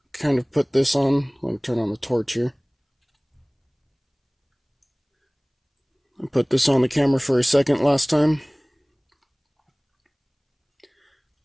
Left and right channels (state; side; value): identical; both; correlation 1.00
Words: kind of put this on. Let me turn on the torch here. I put this on the camera for a second last time,